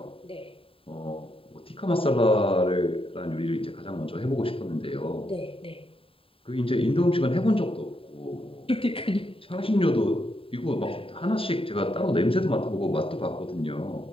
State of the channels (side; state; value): right; late; 0.27 ms